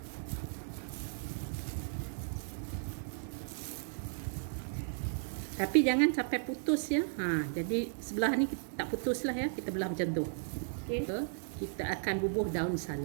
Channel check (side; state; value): left; silent; digital silence